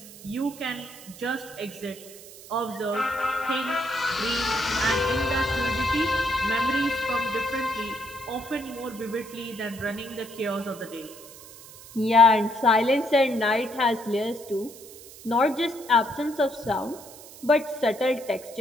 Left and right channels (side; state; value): right; noise; hiss, 18 dB below the sound